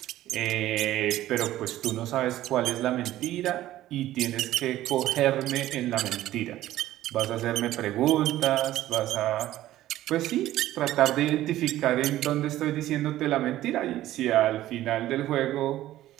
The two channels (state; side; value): quieter; left; 14.3 dB